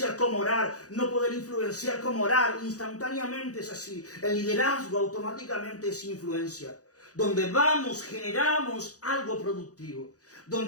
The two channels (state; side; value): late; right; 0.67 ms